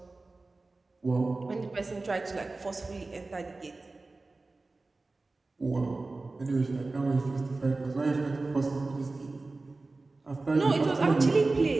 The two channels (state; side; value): quieter; left; 3.4 dB